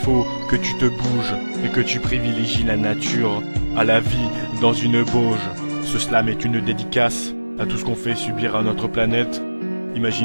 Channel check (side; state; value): both; inverted; correlation -1.00